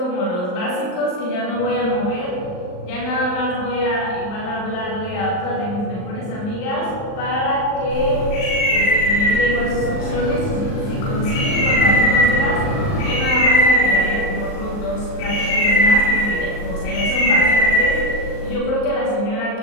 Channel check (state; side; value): late; right; 39 ms